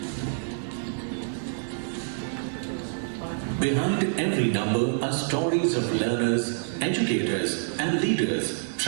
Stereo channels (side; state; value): left; silent; digital silence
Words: Behind every number are stories of learners, educators, and leaders